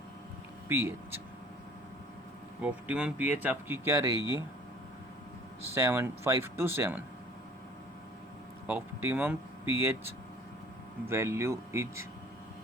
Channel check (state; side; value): normal; both; correlation 0.50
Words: pH. Optimum pH आपकी क्या रहेगी, 5 to 7। Optimum pH value is